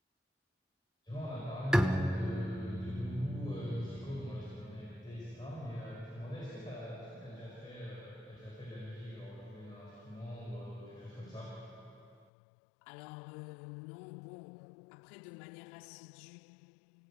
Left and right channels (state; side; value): drops out; right; at 12.2 s